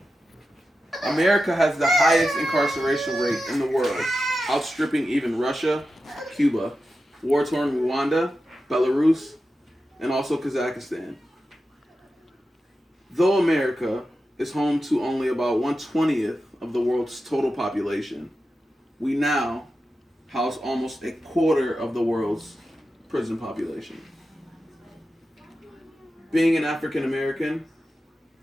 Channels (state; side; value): normal; both; correlation 0.91